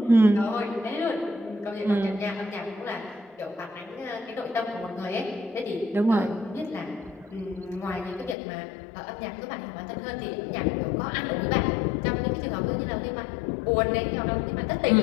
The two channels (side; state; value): right; drops out; at 8.3 s